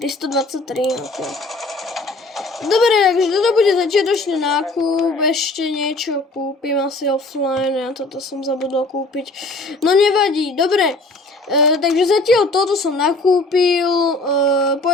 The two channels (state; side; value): quieter; right; 3.1 dB